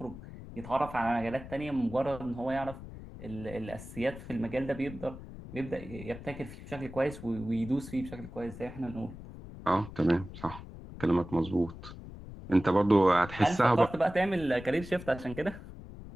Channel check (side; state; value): left; noise; rumble, 13 dB below the sound